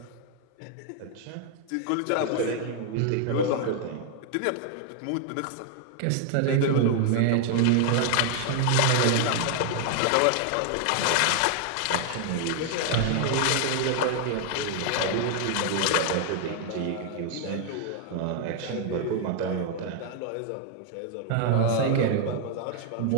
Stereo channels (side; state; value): both; different; correlation 0.00